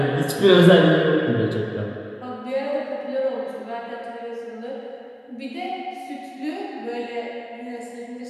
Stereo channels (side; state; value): both; identical; correlation 1.00